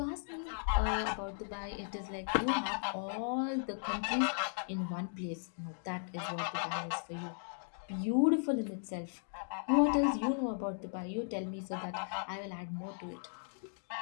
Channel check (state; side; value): silent; right; digital silence